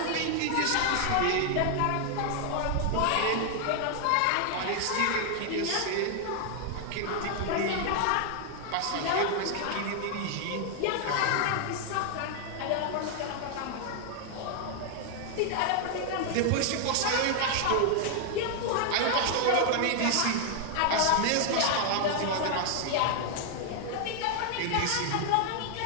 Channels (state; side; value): different; both; correlation 0.00